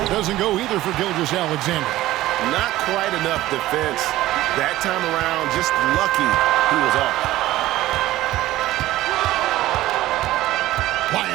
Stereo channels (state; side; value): quieter; left; 15.8 dB